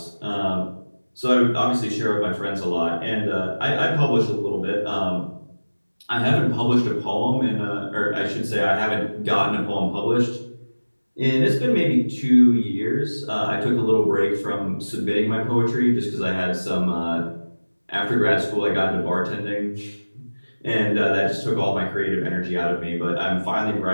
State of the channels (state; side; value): inverted; both; correlation -1.00